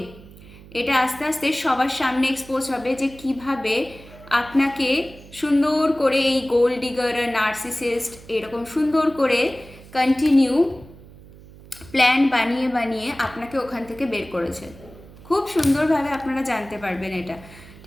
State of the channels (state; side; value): noise; right; hum, 20 dB below the sound